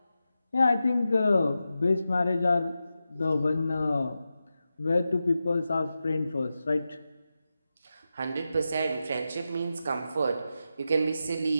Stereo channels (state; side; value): inverted; both; correlation -0.91